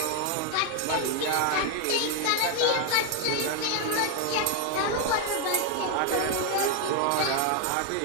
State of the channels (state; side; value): different; both; correlation 0.01